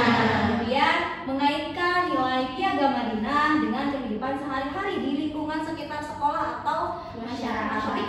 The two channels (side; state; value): both; identical; correlation 1.00